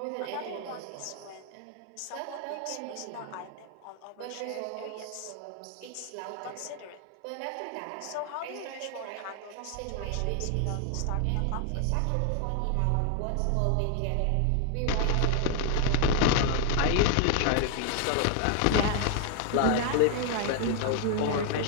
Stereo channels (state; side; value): different; both; correlation 0.00